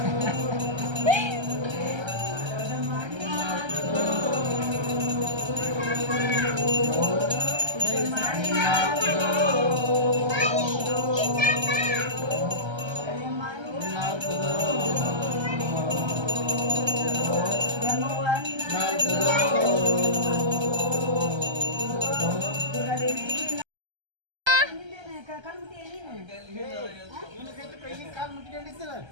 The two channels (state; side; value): late; left; 1.3 ms